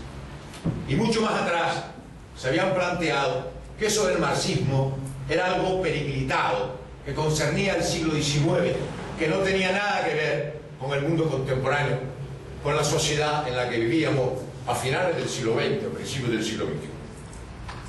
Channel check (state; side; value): identical; both; correlation 1.00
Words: y mucho más atrás se habían planteado que eso del marxismo era algo periclitado, que concernía al siglo XIX, que no tenía nada que ver con el mundo contemporáneo, con la sociedad en la que vivíamos a finales del siglo XX, a principios del siglo XXI.